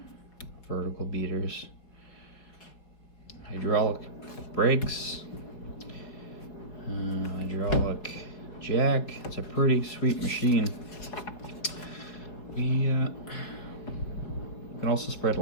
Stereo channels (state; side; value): late; right; 4.5 ms